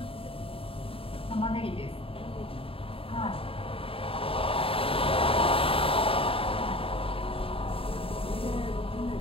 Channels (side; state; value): right; late; 0.27 ms